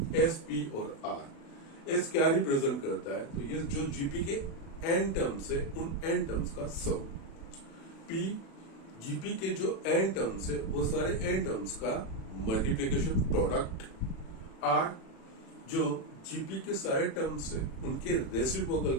एस, पी और आर। एस क्या रिप्रेजेंट करता है? तो ये जो जीपी के एन टर्म्स है उन एन टर्म्स का सम। पी जीपी के जो एन टर्म्स है वो सारे एन टर्म्स का मल्टीप्लीकेशन प्रोडक्ट। आर जो जीपी के सारे टर्म्स है उनके रेसिप्रोकल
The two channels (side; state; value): right; late; 36 ms